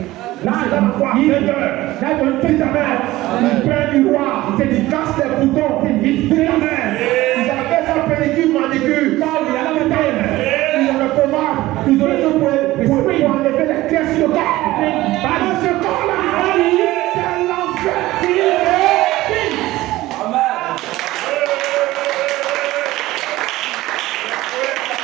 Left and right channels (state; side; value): quieter; left; 17.3 dB